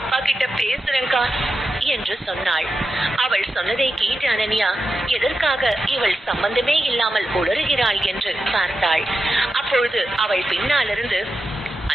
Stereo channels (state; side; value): normal; both; correlation 0.89